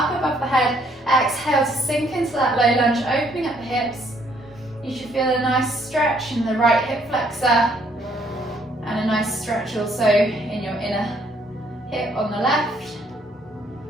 above the head. Exhale to sink into that low lunge, opening up the hips. You should feel a nice stretch in the right hip flexor and a nice stretch also in your inner hip on the left.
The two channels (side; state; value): both; normal; correlation 0.67